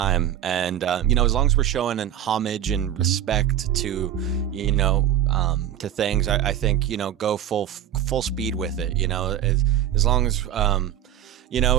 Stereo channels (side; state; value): left; quieter; 10.9 dB